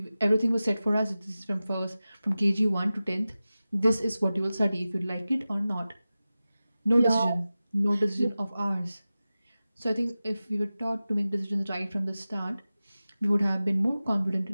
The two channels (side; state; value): both; inverted; correlation -0.95